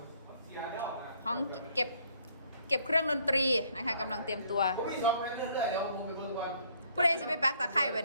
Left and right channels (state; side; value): inverted; both; correlation -0.64